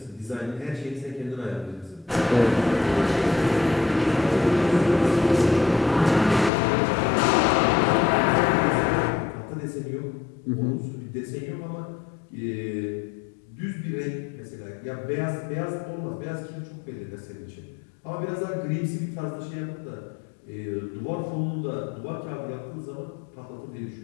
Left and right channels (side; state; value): right; drops out; at 6.5 s